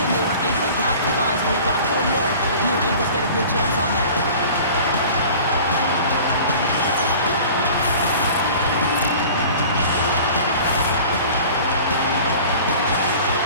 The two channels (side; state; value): both; inverted; correlation -0.43